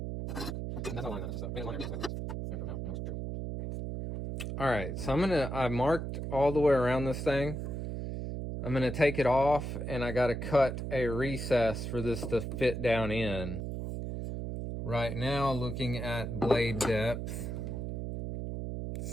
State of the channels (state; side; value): noise; right; hum, 4 dB below the sound